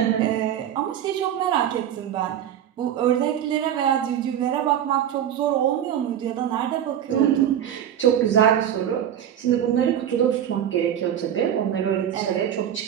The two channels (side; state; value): left; quieter; 10.1 dB